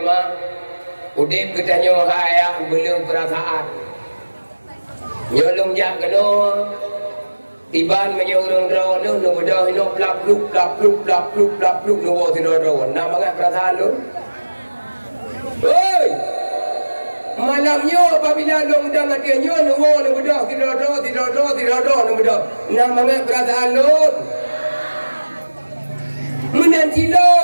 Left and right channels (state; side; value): inverted; both; correlation -1.00